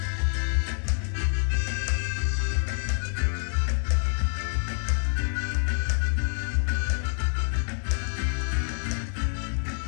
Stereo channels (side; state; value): right; silent; 58 dB below the other